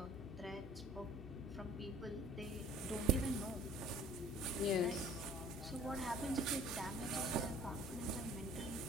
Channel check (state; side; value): noise; left; hum, 11 dB below the sound